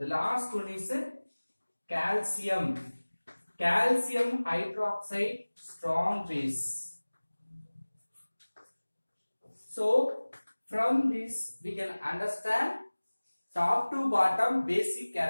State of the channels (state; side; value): inverted; both; correlation -1.00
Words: last one is calcium. Calcium hydroxide, strong base. So from this we can understand top to bottom basic